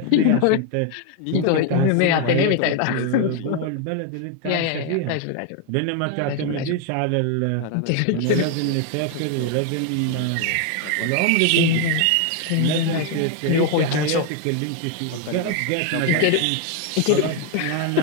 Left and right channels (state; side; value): different; both; correlation 0.01